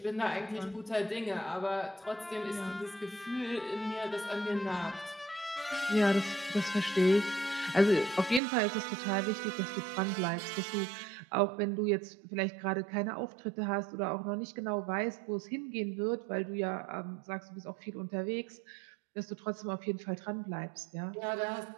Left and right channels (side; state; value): left; drops out; at 8.4 s